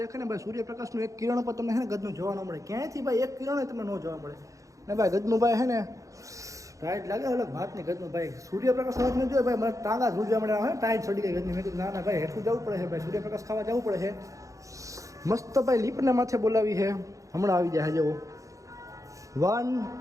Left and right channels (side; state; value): left; late; 0.16 ms